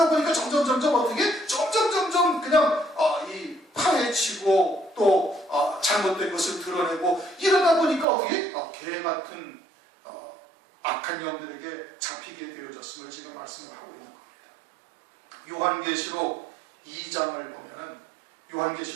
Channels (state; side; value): drops out; left; at 8.1 s